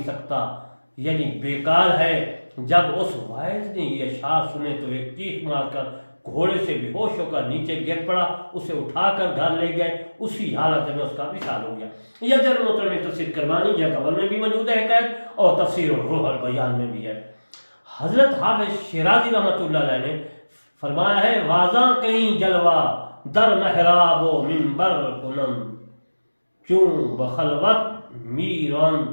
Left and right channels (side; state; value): both; inverted; correlation -1.00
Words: سکتا، یعنی بیکار ہے۔ جب اس واعظ نے یہ اشعار سنے تو ایک چیخ مار کر گھوڑے سے بے ہوش ہو کر نیچے گر پڑا، اسے اٹھا کر گھر لے گئے، اسی حالت میں اس کا وصال ہو گیا۔ یہ جل محترم میں تفسیر کرمانی یا قبل میں بھی موجود ہے حکایت، اور تفسیر الروح البیان میں بھی ہے۔ حضرت حافظ شیرازی رحمۃ اللہ علیہ نے فرمایا ہے، واضح کہیں جلوہ در محراب و منبر کنم، چون بخلوت میران